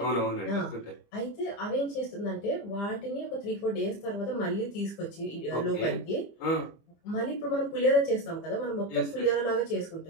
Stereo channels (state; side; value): late; right; 25 ms